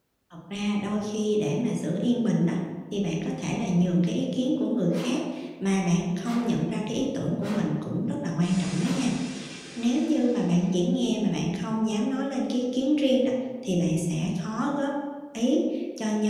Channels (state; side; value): identical; both; correlation 1.00